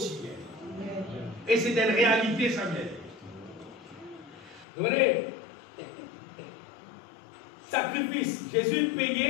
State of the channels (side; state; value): right; drops out; at 4.7 s